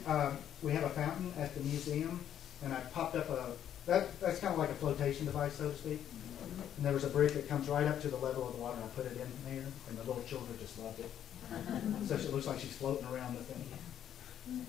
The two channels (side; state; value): right; quieter; 10.1 dB